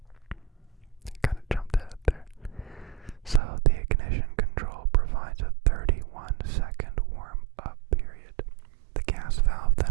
Kind of jumped ahead there. So the ignition control provides a 31-second warm-up period. The gas valve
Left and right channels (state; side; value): drops out; left; at 3.4 s